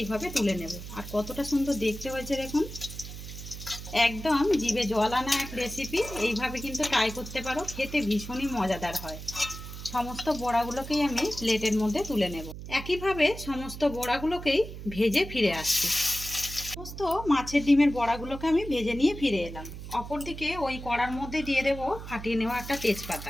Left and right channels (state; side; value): noise; right; hum, 11 dB below the sound